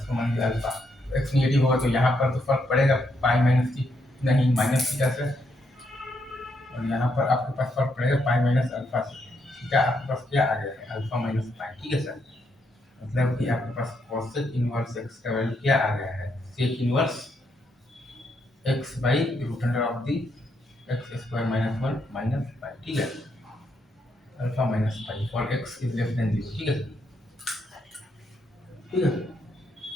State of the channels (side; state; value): both; normal; correlation 0.77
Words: मान लीजिए अल्फा। तो x नेगेटिव होगा तो यहाँ पर तो फर्क पड़ेगा पाई माइनस थी नहीं माइनस थीटा से, और यहाँ पर आपके पास फर्क पड़ेगा पाई माइनस अल्फा से। थीटा आपके पास क्या आ गया है, अल्फा माइनस पाई। ठीक है सर, मतलब कि आपके पास कॉसेक इनवर्स x का वैल्यू क्या आ गया है, sec inverse x by root under of the x square minus 1 minus pi. ठीक है, alpha minus pi for x is less than 0। ठीक है, ठीक है।